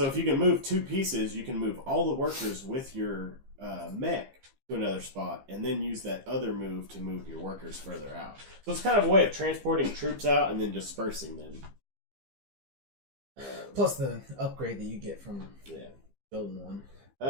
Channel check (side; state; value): left; late; 15 ms